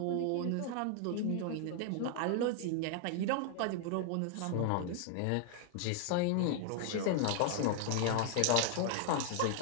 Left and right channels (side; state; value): both; different; correlation 0.00